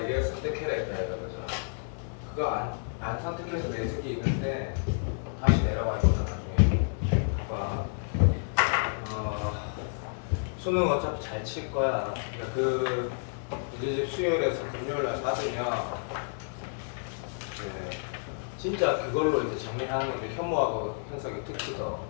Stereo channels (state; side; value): silent; right; digital silence